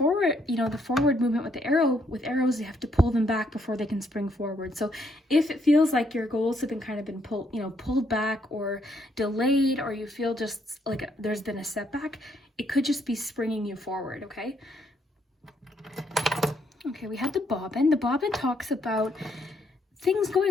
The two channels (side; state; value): both; normal; correlation 0.72